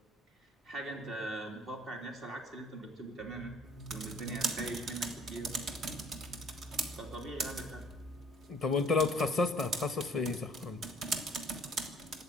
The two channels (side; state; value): both; normal; correlation 0.56